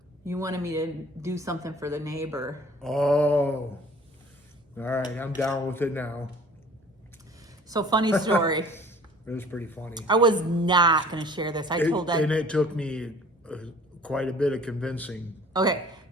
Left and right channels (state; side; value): normal; both; correlation 0.49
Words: You wanted me to do something for the neighbor. Oh. All right, I'm down with it now. So funny story. It was pretty funny. I was not going to share this. I told Ed. And it took me quite a bit of convincing. Okay,